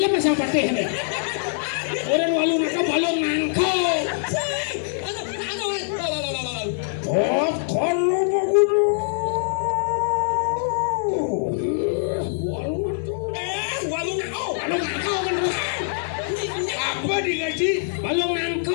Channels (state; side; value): silent; right; digital silence